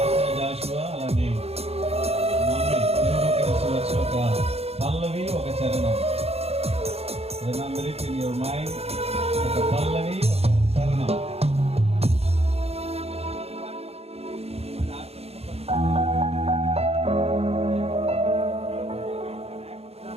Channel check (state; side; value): late; left; 0.29 ms